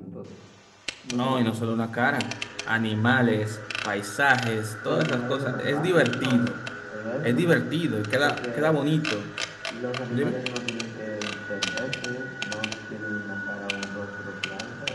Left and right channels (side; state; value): both; identical; correlation 1.00